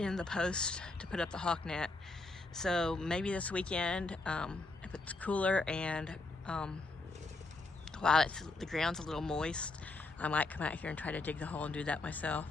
the post to put up the hawk net. So maybe this weekend, if it's cooler and while the ground's a little moist, I might come out here and try to dig the hole and do that myself.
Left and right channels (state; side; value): quieter; right; 3.3 dB